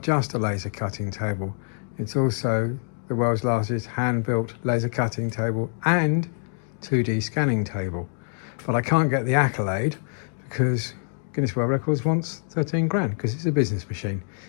just a laser cutting table, it's also the world's largest hand-built laser cutting table and 2D scanning table. But I can't get the accolade because Guinness World Records wants 13 grand because it's a business machine.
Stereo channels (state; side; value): silent; right; digital silence